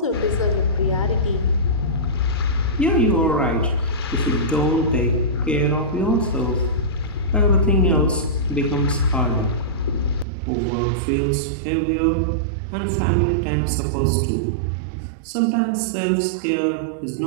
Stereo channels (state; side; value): drops out; left; at 10.2 s